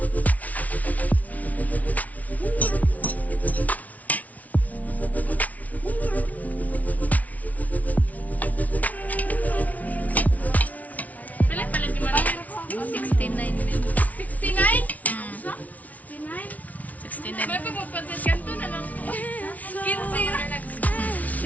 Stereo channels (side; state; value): right; late; 0.071 ms